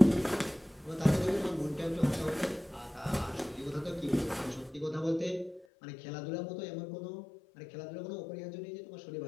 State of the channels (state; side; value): drops out; right; at 5.7 s